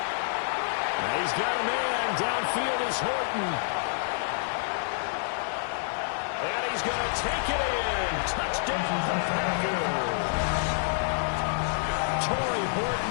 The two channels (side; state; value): right; silent; digital silence